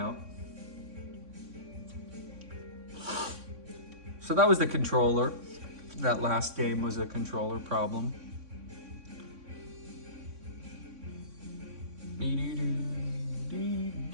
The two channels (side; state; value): left; late; 3.6 ms